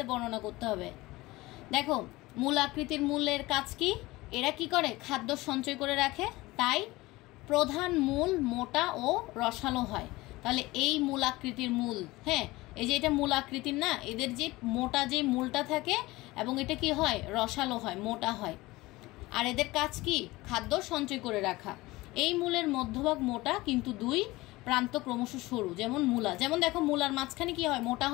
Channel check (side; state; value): right; quieter; 20.1 dB